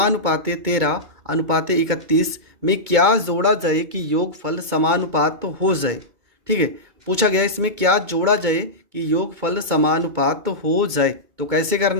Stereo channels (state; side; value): late; left; 2.2 ms